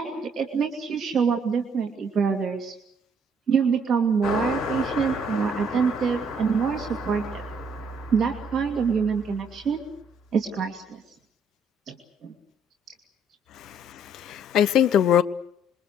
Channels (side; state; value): both; normal; correlation 0.65